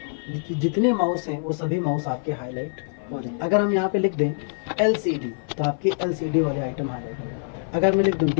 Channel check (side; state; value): right; silent; 56 dB below the other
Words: जितने माउस हैं वो सभी माउस आपके हाईलाइट हो जाए। अगर हम यहाँ पे लिख दें LCD तो आपके LCD वाले आइटम हाईलाइट हो जाए। अगर मैं लिख दूँ